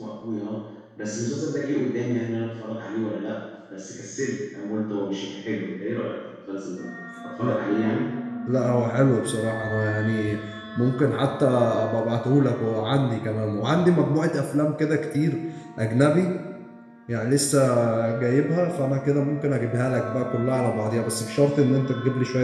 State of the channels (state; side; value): identical; both; correlation 1.00